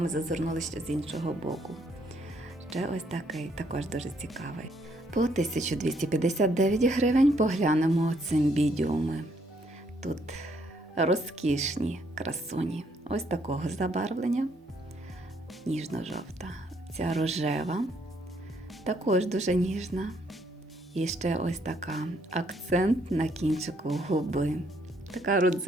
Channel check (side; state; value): both; normal; correlation 0.70